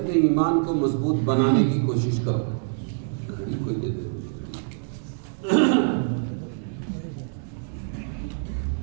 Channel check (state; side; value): silent; left; digital silence